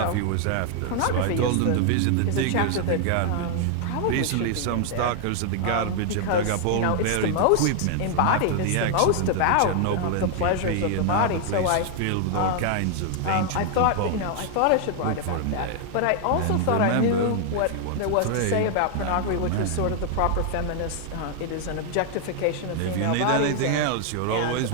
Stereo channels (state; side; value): different; both; correlation 0.00